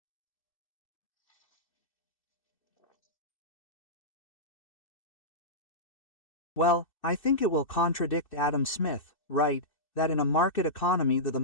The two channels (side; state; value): right; late; 2.6 ms